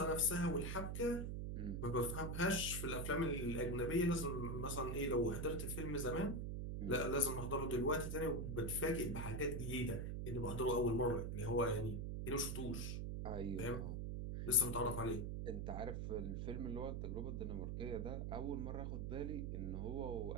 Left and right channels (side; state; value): right; noise; hum, 2 dB below the sound